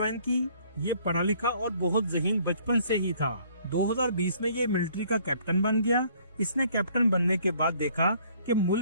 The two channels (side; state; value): both; inverted; correlation -0.60